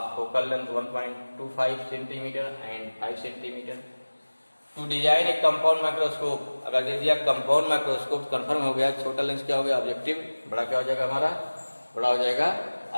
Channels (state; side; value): inverted; both; correlation -1.00